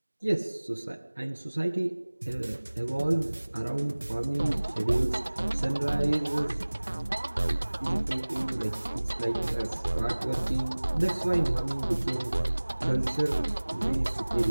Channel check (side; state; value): both; inverted; correlation -1.00